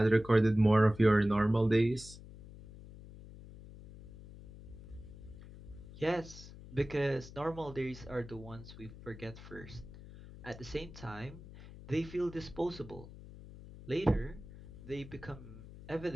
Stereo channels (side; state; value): left; noise; hum, 16 dB below the sound